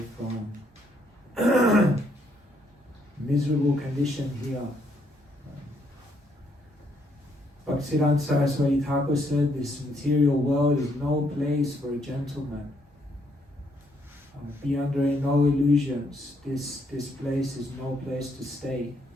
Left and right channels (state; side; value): normal; both; correlation 0.72